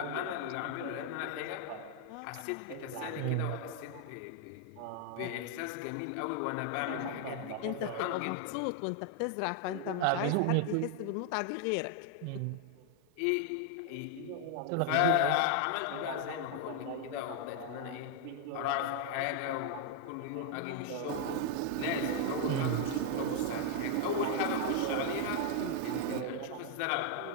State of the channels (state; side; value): different; both; correlation 0.00